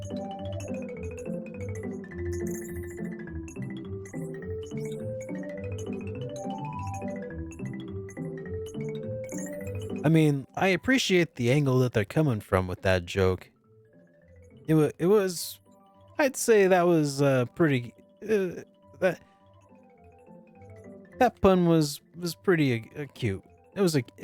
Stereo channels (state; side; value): identical; both; correlation 1.00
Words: I mean, I appreciate the angle that they're coming from with that joke. It was, I'd say that was pretty. That pun was pretty cute. It was